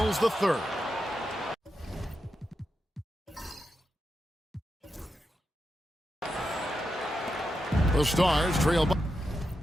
the third. The Stars trail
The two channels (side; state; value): both; normal; correlation 0.87